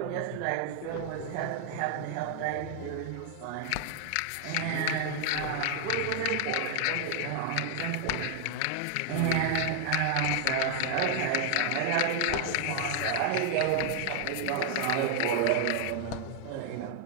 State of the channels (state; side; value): different; both; correlation 0.00